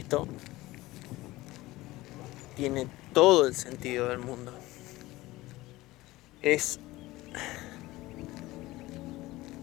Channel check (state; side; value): quieter; right; 18.7 dB